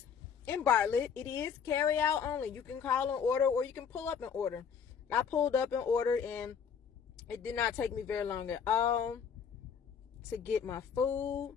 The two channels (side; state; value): right; quieter; 7.0 dB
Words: in Bartlett. It is carry out only. You can call and order, or you can pull up and order. I pulled up and ordered, and it did not take me very long at all to get my food.